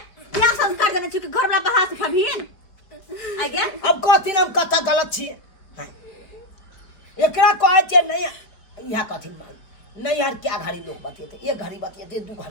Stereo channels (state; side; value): late; right; 4.4 ms